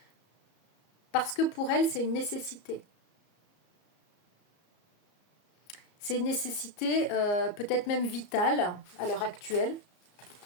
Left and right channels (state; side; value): late; right; 34 ms